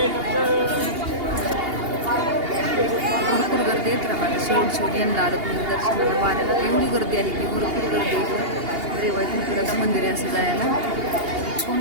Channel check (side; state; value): left; late; 2.8 ms